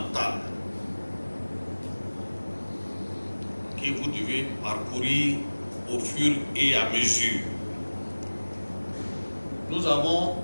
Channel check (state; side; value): inverted; both; correlation -1.00